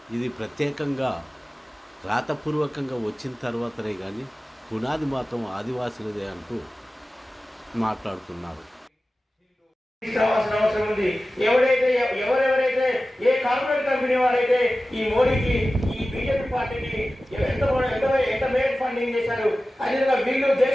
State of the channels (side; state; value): both; normal; correlation 0.96